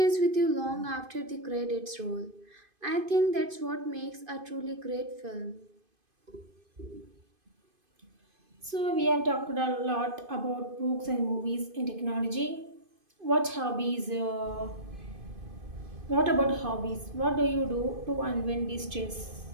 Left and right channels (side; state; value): left; late; 2.5 ms